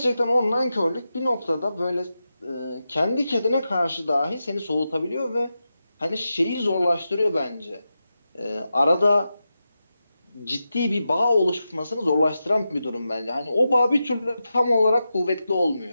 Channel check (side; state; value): both; inverted; correlation -0.90